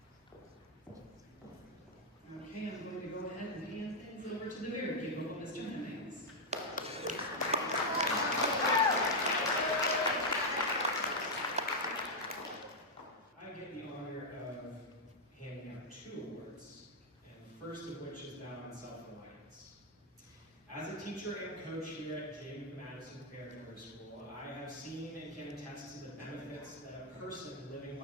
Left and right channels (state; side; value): normal; both; correlation -0.01